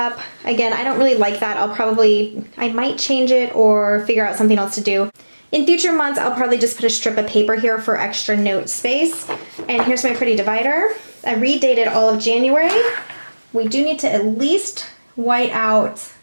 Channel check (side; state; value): both; inverted; correlation -1.00